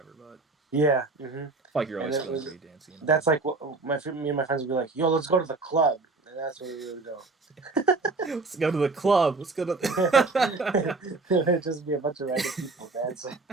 But Yeah. I feel like you're And always it feeling was pretty dancy. that's like what me and my friends would be like, "Yo, let's go to the club," and that's where we would go. Let's go to the club. Let's go to. It'd just be a bunch of random people dancing.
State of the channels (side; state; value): left; quieter; 3.7 dB